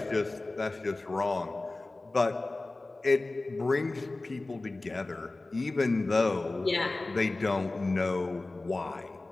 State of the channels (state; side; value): quieter; right; 3.1 dB